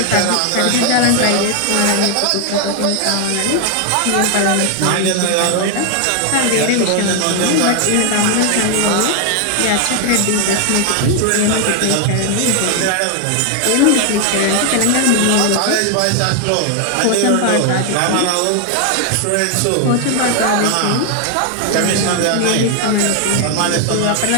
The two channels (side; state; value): both; different; correlation 0.00